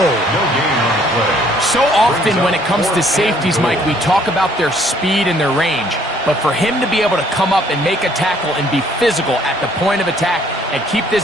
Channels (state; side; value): normal; both; correlation 0.62